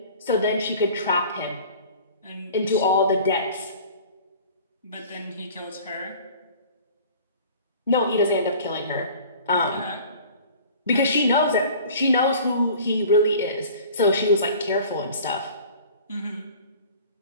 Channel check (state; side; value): inverted; both; correlation -0.45